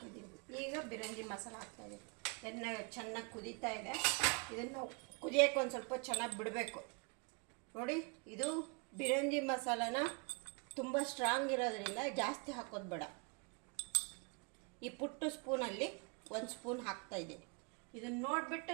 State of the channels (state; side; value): quieter; left; 33.3 dB